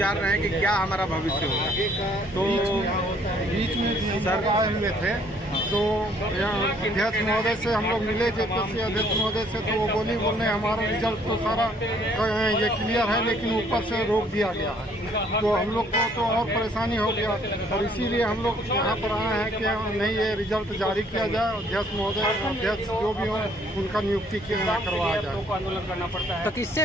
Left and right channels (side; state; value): both; normal; correlation 0.63